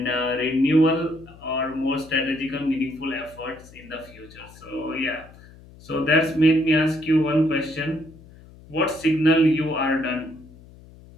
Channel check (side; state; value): left; noise; hum, 22 dB below the sound